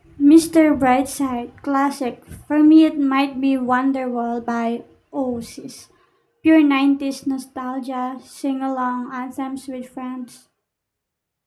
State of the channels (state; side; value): identical; both; correlation 1.00